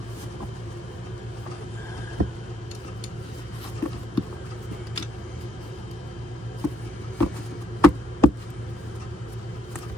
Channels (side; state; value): both; normal; correlation 0.73